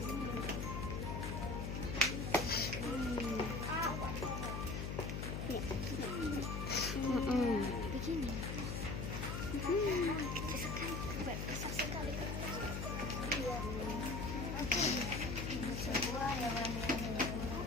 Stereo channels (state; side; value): noise; left; hum, 3 dB below the sound